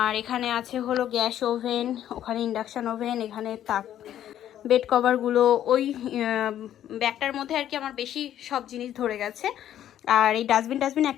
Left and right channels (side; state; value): right; quieter; 11.2 dB